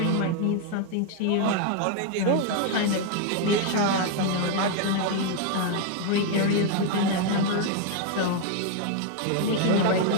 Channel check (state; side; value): different; both; correlation 0.00